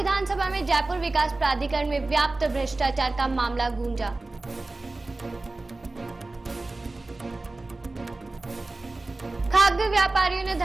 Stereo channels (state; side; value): quieter; left; 3.1 dB